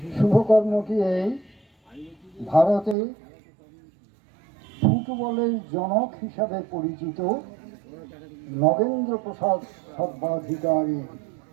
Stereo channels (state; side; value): drops out; left; at 3.0 s